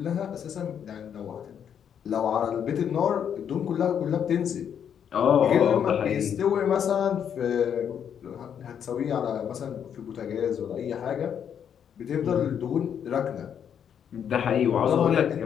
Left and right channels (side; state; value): right; quieter; 8.4 dB